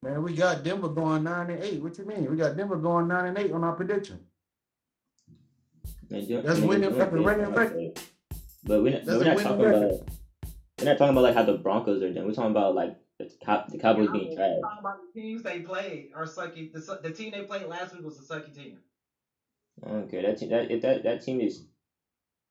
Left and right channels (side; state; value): both; identical; correlation 1.00